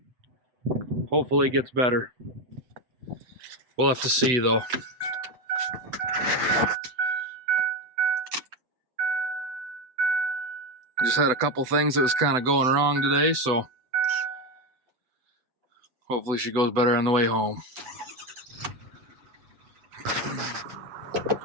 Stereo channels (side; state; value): left; late; 8.0 ms